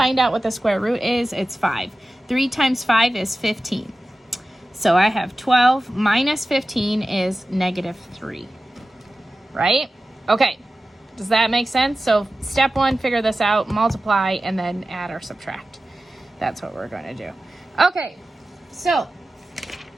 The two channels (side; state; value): both; normal; correlation 0.95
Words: out what the square root is. It's 5. 3 times 5 is 15. So I have 12 minus 15 is -3, right? Okay, does that make sense? So step 1, figure this out, multiply, and then add or subtract. That's what we're going to do. Okay, so